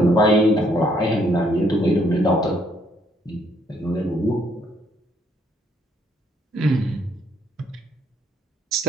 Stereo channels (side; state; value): both; normal; correlation 0.69